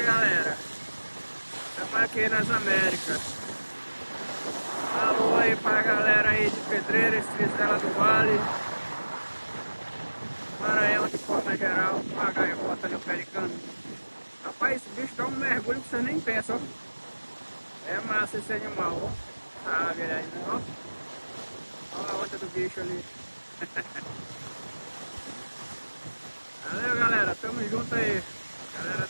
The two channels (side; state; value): both; inverted; correlation -1.00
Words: galera, estamos aqui nas Américas. Alô aí pra galera aí de Pedreiras, Tristela do Vale, Maranhão de forma geral, a gaivota ali, o pelicano. Rapaz, esse bicho dá um mergulho que você nem pensa, ó. É massa esse animal, ó. Sabe aí, né, ó. Olha a onda do bicho ali. Valeu, galera, tamo junto aí. Galera